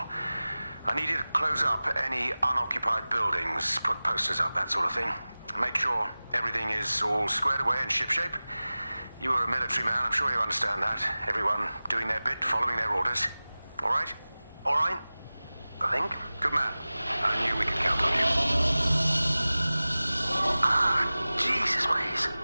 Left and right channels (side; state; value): both; inverted; correlation -0.98